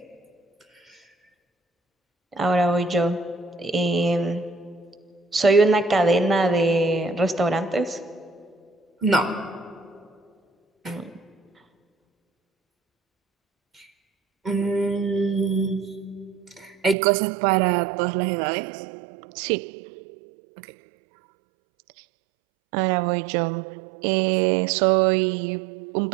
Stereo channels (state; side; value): drops out; left; at 16.9 s